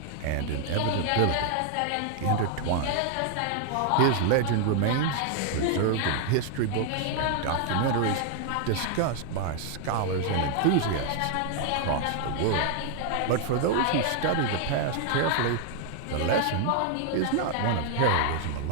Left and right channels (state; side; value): different; both; correlation 0.00